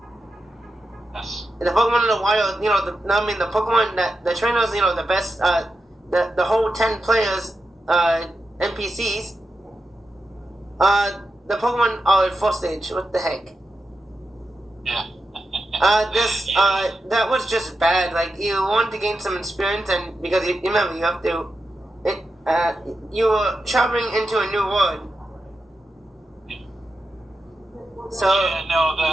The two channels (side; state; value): both; normal; correlation 0.89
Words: Yes. And the Pokemon in the wild, the Pokemon that the trainers, the best, the whole 10 players, NPCs, the Pokemon are at 4th stage. What the heck? Yeah. That was just bad. Like, you want to gain some experience, and because you remember, you have to, you were traveling into a new world. So yeah, no,